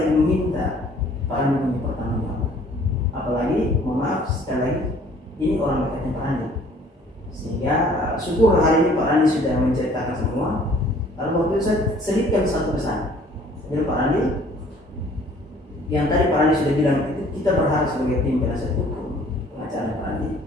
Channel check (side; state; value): both; normal; correlation 0.55